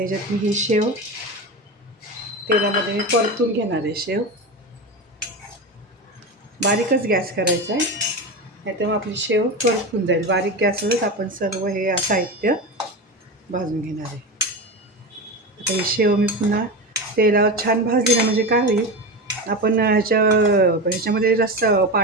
मी ही शेव तेलामध्ये मी परतून घेणार आहे. शेव बारीकच गॅस करायचा आहे, नाही तर मग आपली शेव करपून जाईल. बारीक गॅसवरच आपण सर्व हे साहित्य भाजून घेणार आहे. आता ही शेव मी पुन्हा तेलावर छान भाजली ना, म्हणजे काय होईल, आपण ह्याच्यामध्ये रस्सा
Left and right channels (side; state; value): both; normal; correlation 0.22